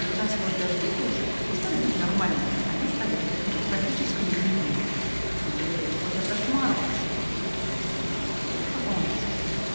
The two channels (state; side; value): inverted; both; correlation -1.00